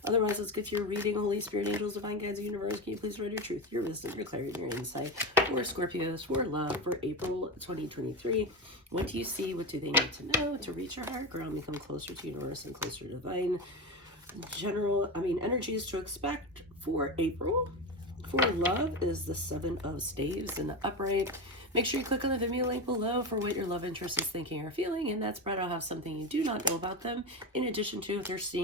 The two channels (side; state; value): both; normal; correlation 0.19